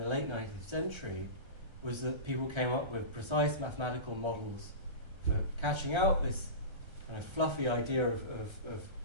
late 19th century was that people came up with precise mathematical models for catching out this kind of fluffy idea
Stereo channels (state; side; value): late; left; 1.3 ms